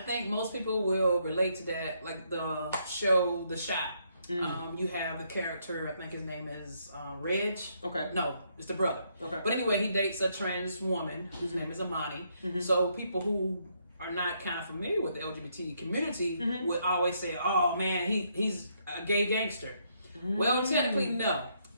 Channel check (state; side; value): inverted; both; correlation -0.73